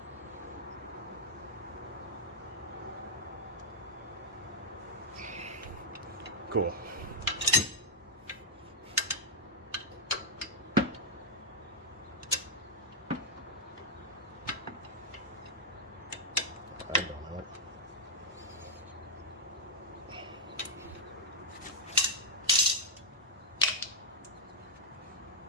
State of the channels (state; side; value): normal; both; correlation -0.06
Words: Cool. I don't know.